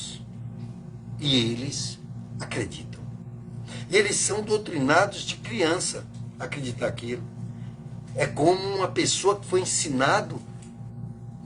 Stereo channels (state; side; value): identical; both; correlation 1.00